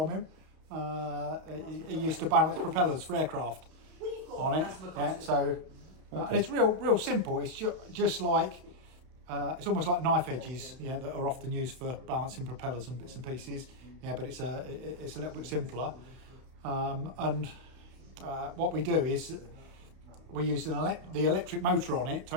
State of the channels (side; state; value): left; late; 32 ms